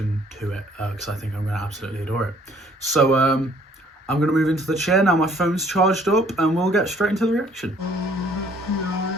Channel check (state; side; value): normal; both; correlation 0.60